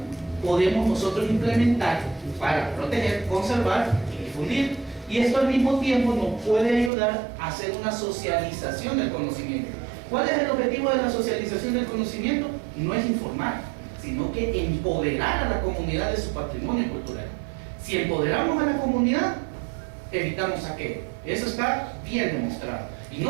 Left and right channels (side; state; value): left; drops out; at 6.9 s